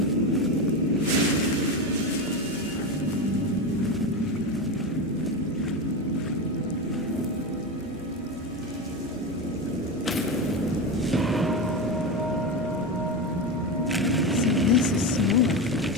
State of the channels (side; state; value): right; noise; hum, 28 dB below the sound